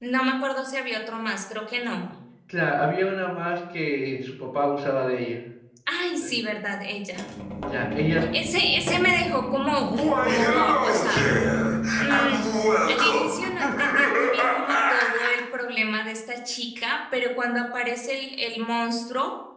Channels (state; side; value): identical; both; correlation 1.00